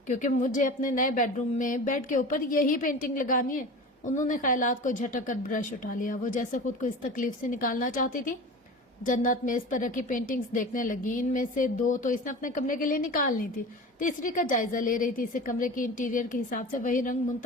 کیونکہ مجھے اپنے نئے بیڈ روم میں بیڈ کے اوپر یہی پینٹنگ لگانی ہے. انہوں نے خیالات کو جھٹک کر برش اٹھا لیا. وہ جیسے خود کو اس تکلیف سے نکالنا چاہتی تھی. جنت میز پر رکھی پینٹنگز دیکھنے لگی. ان میں سے 2 تو اس نے اپنے کمرے کے لیے نکالنی تھی، تیسری کا جائزہ لے رہی تھی. اسے کمرے کی انٹیریئر کے حساب سے وہی رنگ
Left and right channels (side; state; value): both; normal; correlation 0.34